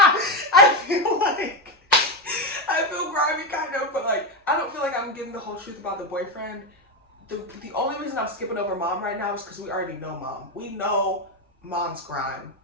I feel grimy kind of, but like, I don't feel like I'm getting the whole truth about the boyfriend. The only reason I'm skipping over mom right now is because we already know mom. We know mom's grime,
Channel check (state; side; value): normal; both; correlation 0.10